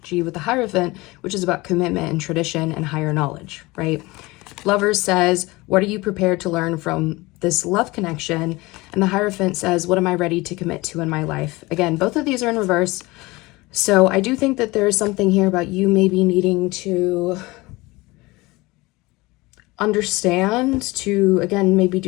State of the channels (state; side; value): quieter; right; 22.0 dB